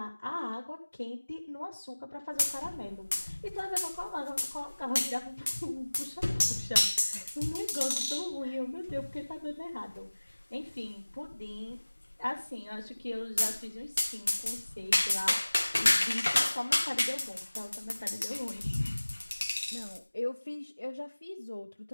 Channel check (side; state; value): both; inverted; correlation -1.00